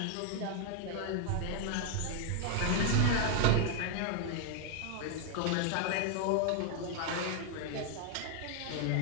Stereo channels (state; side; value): different; both; correlation 0.00